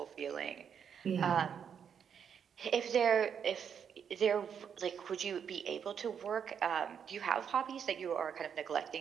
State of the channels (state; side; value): quieter; left; 7.6 dB